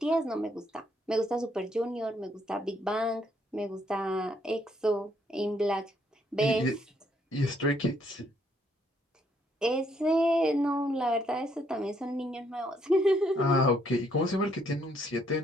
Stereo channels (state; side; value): normal; both; correlation 0.70